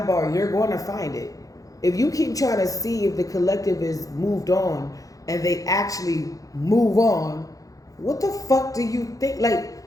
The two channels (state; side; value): late; right; 0.17 ms